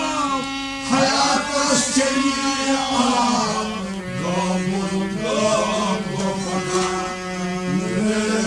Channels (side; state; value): both; identical; correlation 1.00